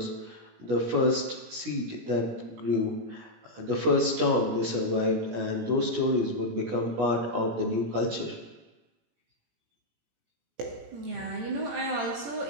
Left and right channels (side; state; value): left; late; 18 ms